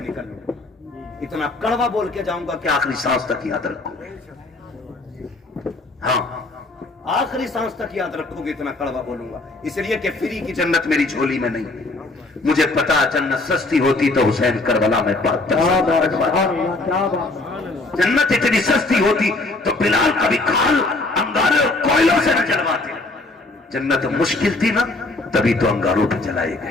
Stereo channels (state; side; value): quieter; right; 3.0 dB